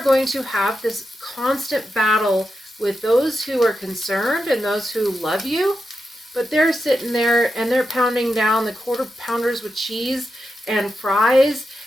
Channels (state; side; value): normal; both; correlation 0.88